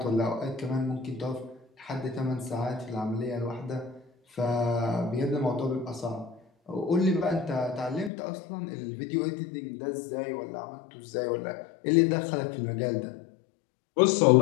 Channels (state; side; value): drops out; right; at 8.1 s